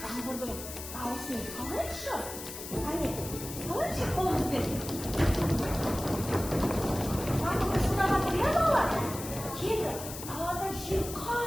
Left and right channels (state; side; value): noise; left; hiss, 10 dB below the sound